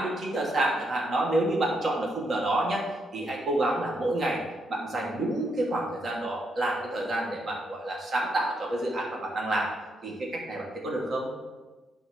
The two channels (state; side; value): normal; both; correlation 0.78